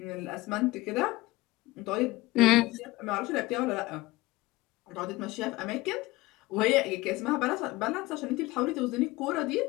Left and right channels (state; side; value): quieter; right; 20.1 dB